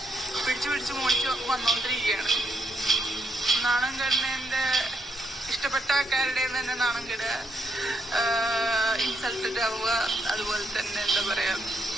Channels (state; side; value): normal; both; correlation 0.77